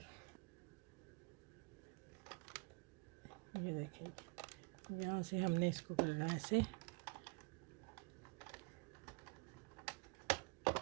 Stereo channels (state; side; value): quieter; left; 29.8 dB